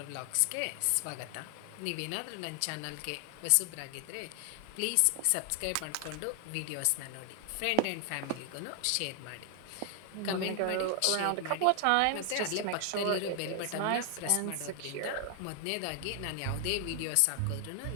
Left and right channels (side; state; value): both; different; correlation 0.00